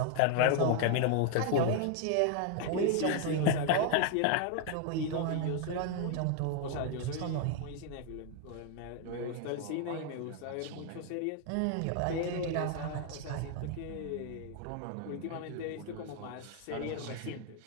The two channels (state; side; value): different; both; correlation 0.00